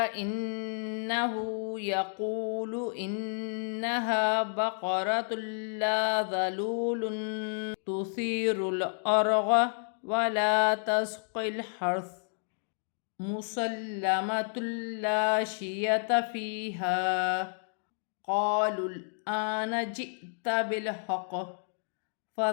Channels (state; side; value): silent; right; digital silence